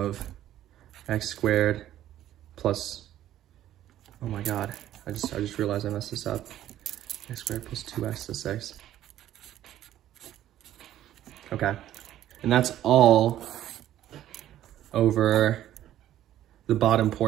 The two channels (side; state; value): left; quieter; 12.5 dB